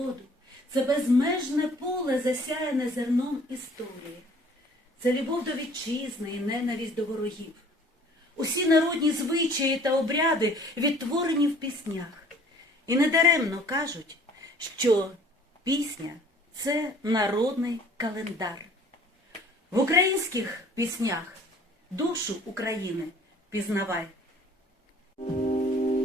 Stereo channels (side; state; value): both; normal; correlation 0.53